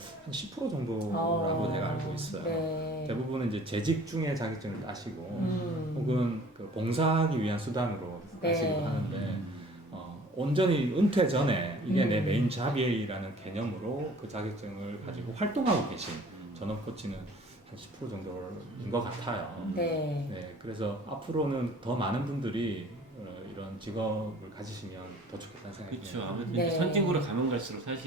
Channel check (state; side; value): normal; both; correlation 0.50